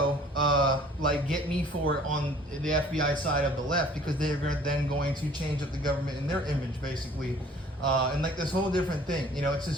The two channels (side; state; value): both; normal; correlation 0.53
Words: like get me for it on the FBI side of the left, because they're then going to change up the government in their image, basically. And like this whole different thing, it's